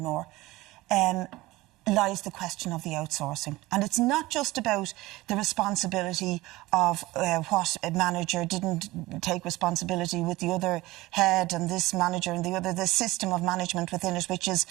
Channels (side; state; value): left; quieter; 19.3 dB